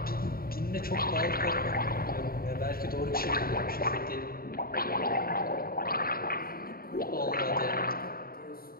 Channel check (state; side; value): late; right; 0.43 ms